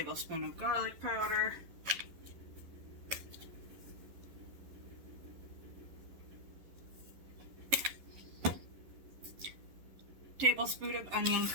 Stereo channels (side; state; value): left; late; 11 ms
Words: of garlic powder, tablespoon of onion